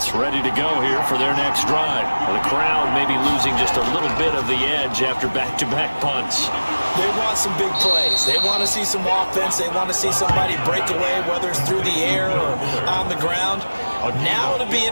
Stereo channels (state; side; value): inverted; both; correlation -1.00